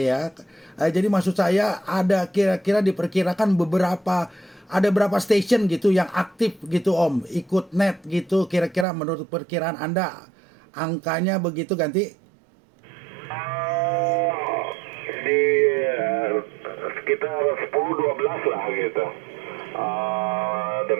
ya. Jadi maksud saya ada kira-kira diperkirakan ada berapa station gitu yang aktif gitu Om, ikut net gitu kira-kira menurut perkiraan Anda angkanya begitu ganti? Di sekitar 10-12 lah gitu.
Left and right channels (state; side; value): drops out; left; at 8.8 s